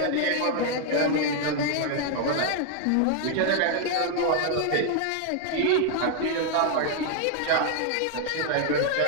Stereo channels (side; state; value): both; different; correlation 0.00